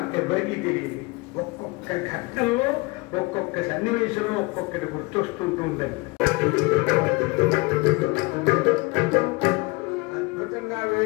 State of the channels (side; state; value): right; quieter; 25.0 dB